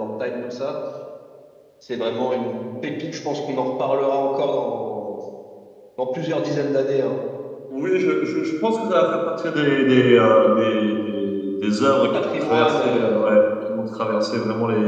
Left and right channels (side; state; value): both; identical; correlation 1.00